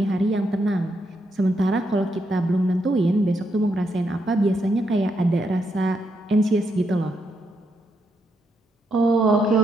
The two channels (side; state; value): both; normal; correlation 0.80